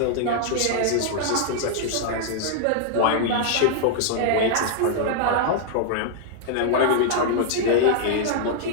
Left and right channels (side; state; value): both; different; correlation -0.01